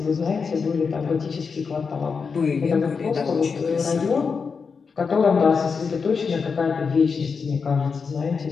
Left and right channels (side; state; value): right; quieter; 5.4 dB